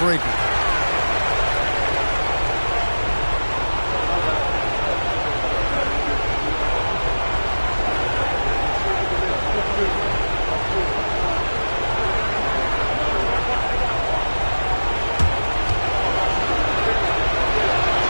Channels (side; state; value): both; inverted; correlation -1.00